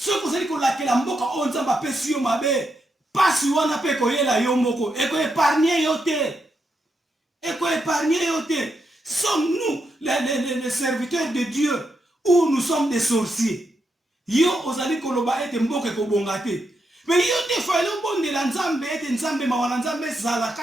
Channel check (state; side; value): normal; both; correlation 0.83